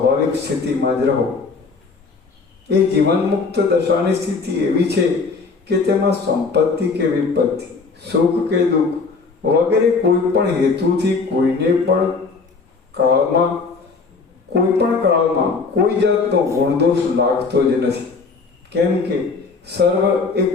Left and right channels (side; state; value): right; quieter; 4.5 dB